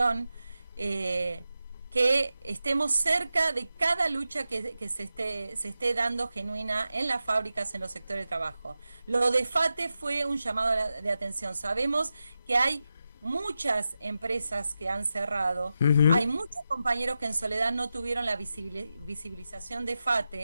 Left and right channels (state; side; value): inverted; both; correlation -0.91